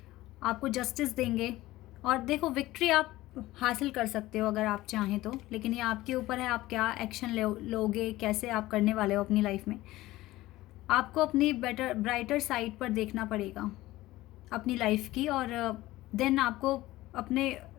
आपको जस्टिस देंगे, और देखो विक्ट्री आप हासिल कर सकते हो अगर आप चाहें तो, लेकिन ये आपके ऊपर है आप क्या एक्शन लोगे, कैसे आप करने वाले हो अपनी लाइफ में। आपको अपनी ब्राइटर साइड पर देखना पड़ेगा अपनी लाइफ की, और देन आपको अपने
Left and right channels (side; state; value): right; quieter; 17.3 dB